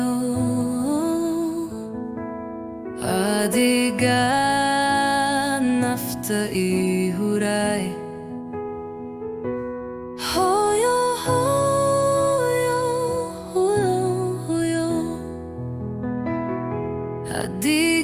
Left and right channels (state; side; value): identical; both; correlation 1.00